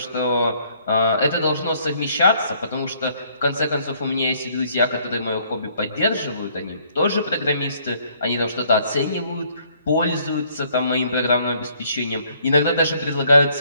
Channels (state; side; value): inverted; both; correlation -0.64